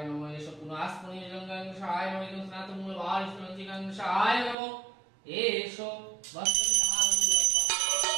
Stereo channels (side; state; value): left; drops out; at 4.5 s